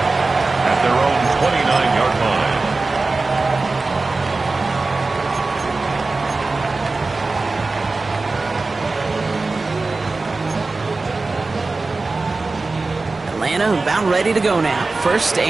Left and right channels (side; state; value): left; quieter; 3.6 dB